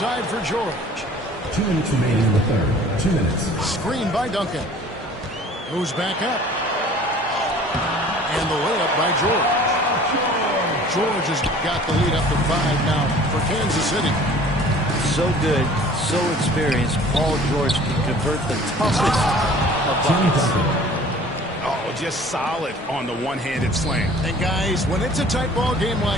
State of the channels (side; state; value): both; normal; correlation 0.49